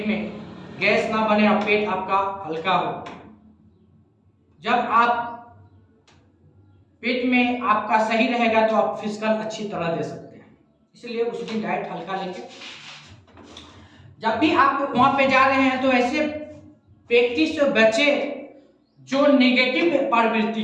में गैस ना बने और पेट आपका हल्का हो। जब आप पेट में आपका सही रहेगा तो आप फिजिकल अच्छी तरह दे सकते हैं, इसलिए उस दिन डाइट हल्का लेंगे। जब भी आप वहां पे जा रहे हैं तो ऐसे व्यक्ति से बचे जो नेगेटिव प्रवृत्ति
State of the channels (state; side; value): identical; both; correlation 1.00